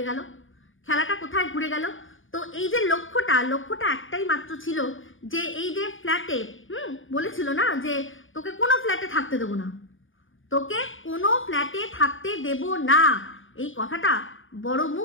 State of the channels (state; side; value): late; right; 0.57 ms